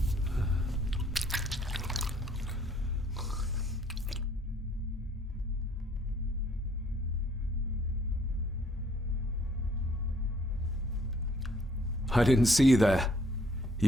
I didn't see you there.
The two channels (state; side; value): normal; both; correlation 0.62